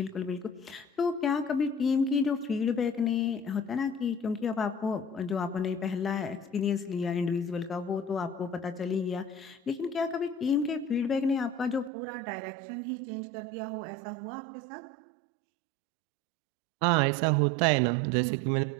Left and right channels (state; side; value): drops out; left; at 11.9 s